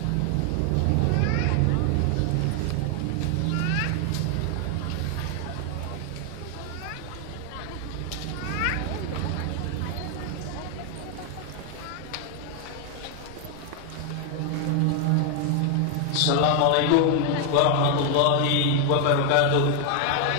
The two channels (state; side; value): different; both; correlation 0.01